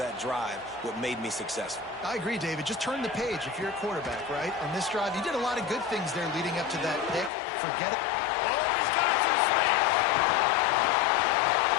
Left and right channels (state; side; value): drops out; right; at 7.3 s